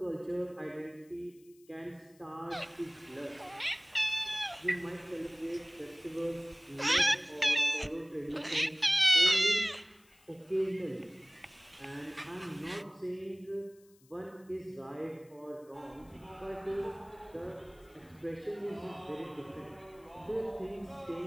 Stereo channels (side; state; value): left; noise; hiss, 29 dB below the sound